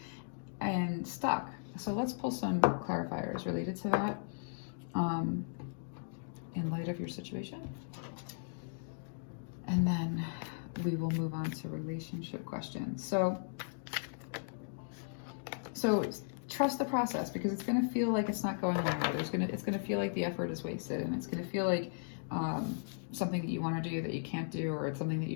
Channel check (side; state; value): right; silent; digital silence